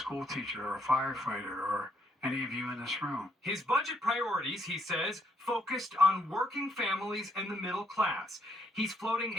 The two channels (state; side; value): normal; both; correlation 0.72